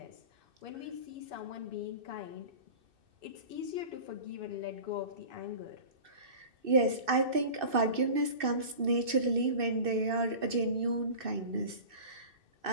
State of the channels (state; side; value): late; left; 2.6 ms